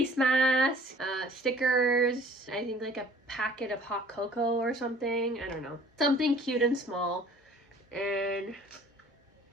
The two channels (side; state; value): both; normal; correlation 0.52